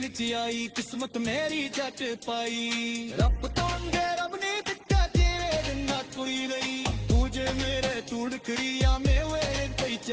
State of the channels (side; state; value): both; identical; correlation 1.00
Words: ਚ ਆਈ ਕਿਸਮਤ ਮੇਰੀ ਜੱਟ ਪਾਈ ਰੱਬ ਤੋਂ ਅੰਗੇ ਰੱਬ ਨੇ ਦਿੱਤਾ ਜਿਵੇਂ ਦਿੰਦਾ ਕੋਈ ਨਹੀਂ ਤੂੰ ਜੇ ਮੇਰੇ ਤੂੜ ਕਰੀਆ ਮੇਵੇ